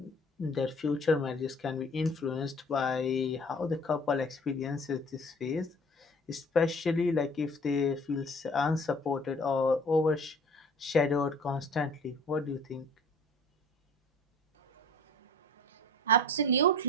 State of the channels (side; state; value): both; normal; correlation 0.47